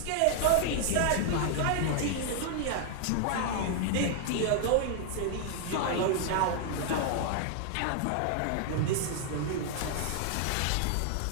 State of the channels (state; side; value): different; both; correlation 0.00